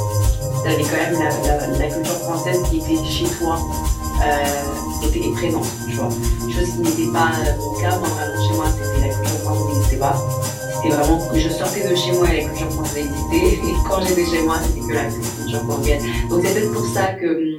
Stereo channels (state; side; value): identical; both; correlation 1.00